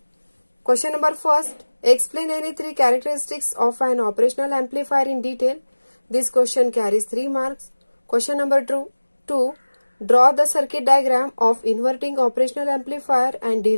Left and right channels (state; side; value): inverted; both; correlation -1.00